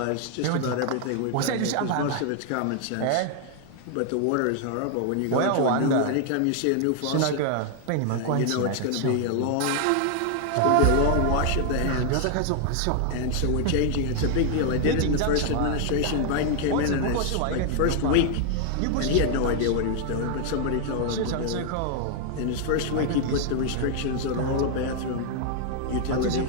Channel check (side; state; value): both; different; correlation 0.00